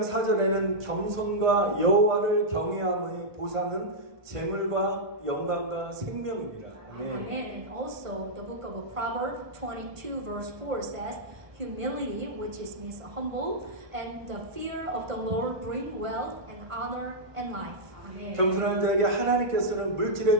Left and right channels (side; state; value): left; late; 1.5 ms